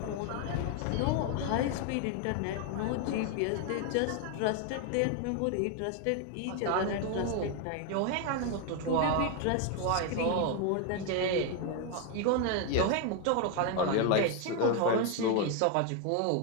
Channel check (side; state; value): both; different; correlation 0.01